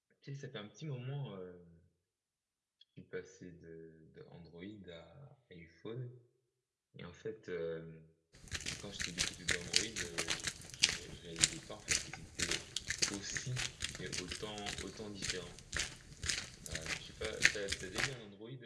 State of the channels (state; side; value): identical; both; correlation 1.00